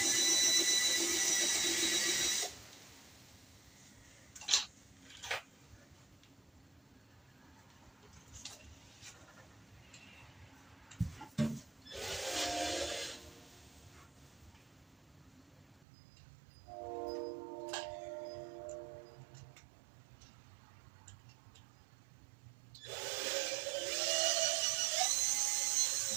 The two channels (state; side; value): drops out; left; at 15.9 s